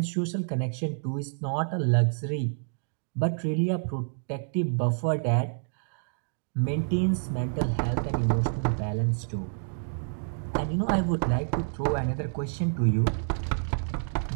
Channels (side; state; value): left; silent; digital silence